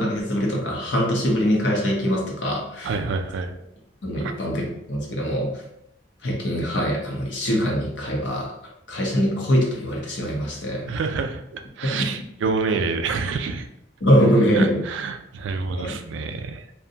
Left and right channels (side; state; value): both; normal; correlation 0.60